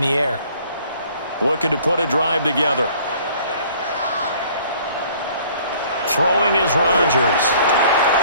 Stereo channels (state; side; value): inverted; both; correlation -0.55